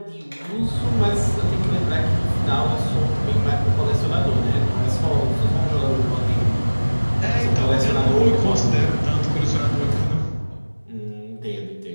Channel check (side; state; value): both; inverted; correlation -1.00